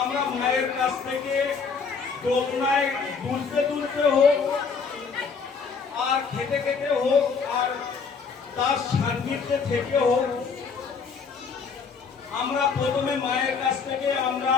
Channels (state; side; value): quieter; right; 5.4 dB